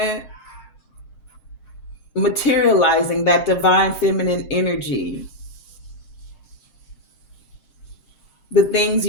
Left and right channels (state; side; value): late; right; 7.6 ms